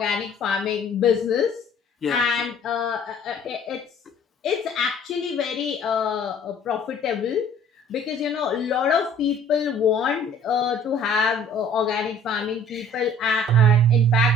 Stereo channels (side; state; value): both; normal; correlation 0.53